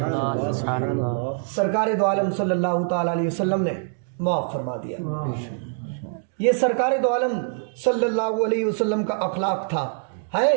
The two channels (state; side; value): silent; left; digital silence